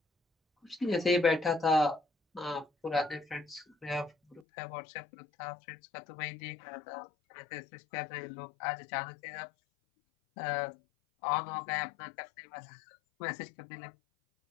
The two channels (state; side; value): drops out; right; at 4.4 s